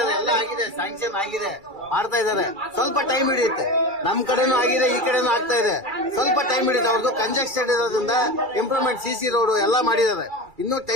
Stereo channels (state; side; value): late; left; 2.3 ms